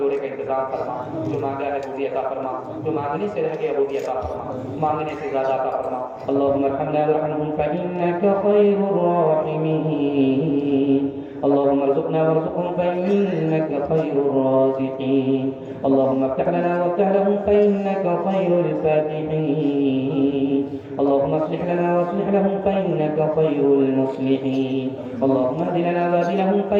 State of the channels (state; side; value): identical; both; correlation 1.00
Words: کا انتظام فرما. جو مانگا ہے وہ بھی عطا فرما، جو مانگنے سے رہ گیا وہ بھی عطا فرما، مانگنے سے زیادہ عطا فرما. اللهم ارحمنا وارحمهم فإنك خير الراحمين. اللهم ارزقنا وارزقهم فإنك خير الرازقين. اللهم افتح لنا وافتح لهم فإنك خير الفاتحين. اللهم اصلح لنا واصلح لهم فإنك خير المصلحين. اللهم اهد لنا واهد لهم